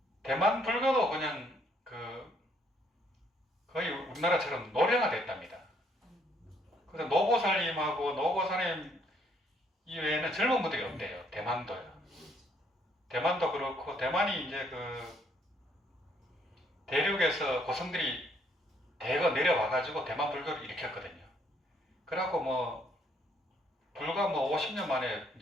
대만 불교도 그냥 그 거의 우리나라처럼 노령화 됐답니다. 그래서 노고살님하고 노고사님 이외에는 젊은 분들이 없대요. 대만도요. 대만도 그렇고 대만이 이제 그 대륙에서 고성들이 대거 내려와가지고 대만 불교를 일으켰거든요. 그래갖고 뭐 불과 뭐 50년 만에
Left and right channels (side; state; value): both; normal; correlation 0.68